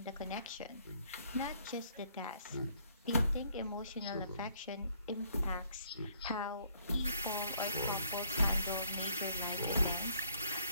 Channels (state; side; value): inverted; both; correlation -0.66